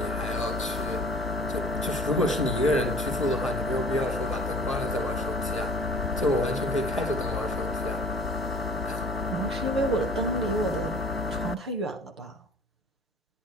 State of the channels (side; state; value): both; normal; correlation 0.47